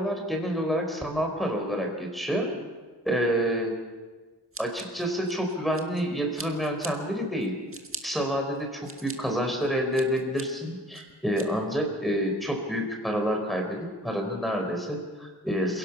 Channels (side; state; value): both; normal; correlation 0.51